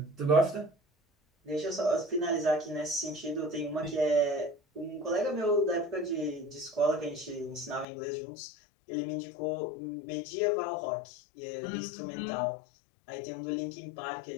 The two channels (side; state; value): right; drops out; at 7.9 s